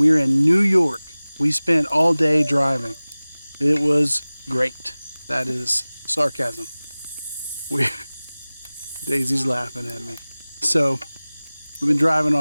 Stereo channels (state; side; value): inverted; both; correlation -0.99